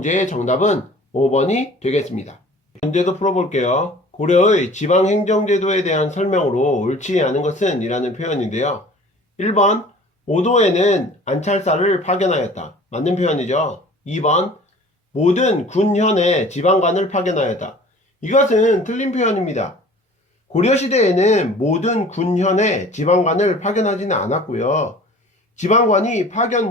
정답은 5번이 되겠습니다. 문제도 풀어볼게요. 고려의 지방행정제도에 대한 설명으로 옳지 않은 것은? 이라는 표현인데요. 1번 오도에는 안찰사를 파견하였다. 맞는 표현이죠. 2번 모든 군현에 지방관을 파견하였다. 이것은 틀린 표현입니다. 고려시대에는 모든 군현에 지방관을 파견하지는 않았고요. 지방관이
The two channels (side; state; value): both; normal; correlation 0.46